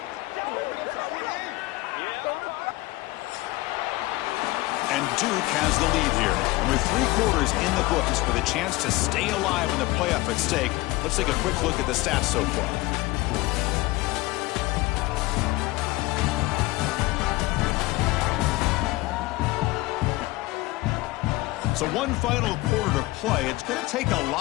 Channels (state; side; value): quieter; right; 20.3 dB